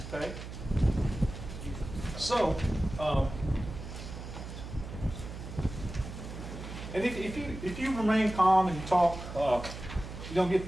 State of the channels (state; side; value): noise; right; hum, 10 dB below the sound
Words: Okay? So, and if you remain calm and you talk, you don't get